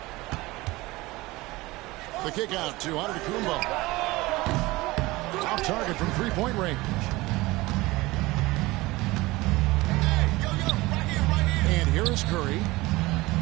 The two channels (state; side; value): quieter; left; 20.6 dB